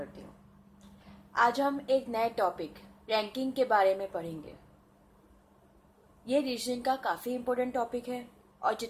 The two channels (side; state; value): both; identical; correlation 1.00